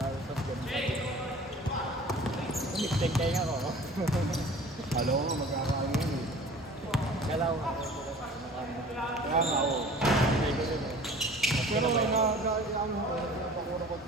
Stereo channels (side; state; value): both; normal; correlation 0.45